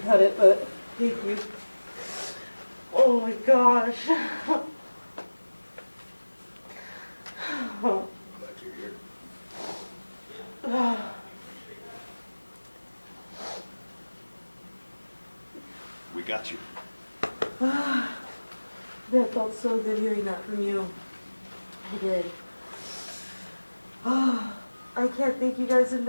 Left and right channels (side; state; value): both; inverted; correlation -1.00